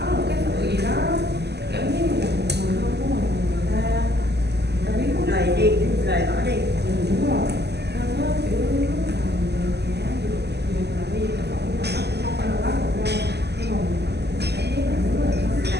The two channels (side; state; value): left; late; 0.49 ms